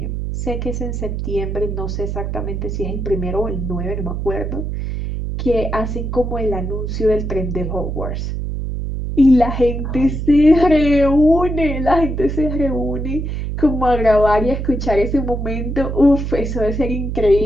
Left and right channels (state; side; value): noise; right; hum, 3 dB below the sound